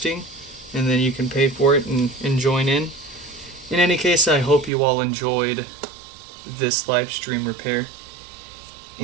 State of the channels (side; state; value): left; drops out; at 4.7 s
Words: and then you can pay for it and join in. In any case, I hope you all enjoyed this live stream repair,